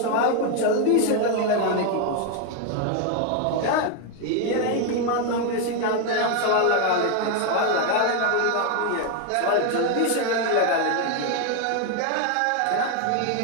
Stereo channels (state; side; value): different; both; correlation 0.01